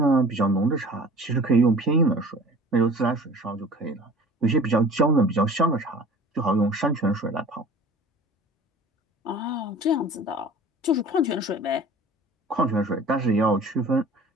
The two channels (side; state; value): both; normal; correlation 0.45